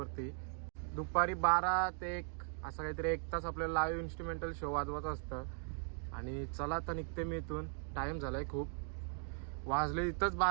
दुपारी 12 ते 1 असं काहीतरी 1 तास आपल्याला लाईव्ह इन्स्ट्रुमेंटल शो वाजवायचं असतं. आणि चला आता निघते मी इथून. टाईम झाला आहे खूप, वाजले इथंच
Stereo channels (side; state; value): left; silent; 52 dB below the other